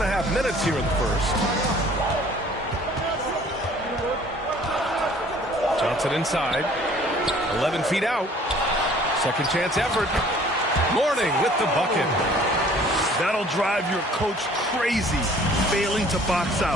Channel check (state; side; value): normal; both; correlation 0.53